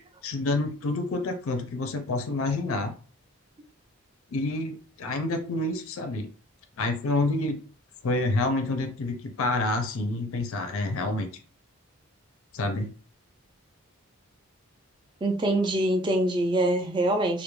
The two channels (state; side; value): normal; both; correlation 0.51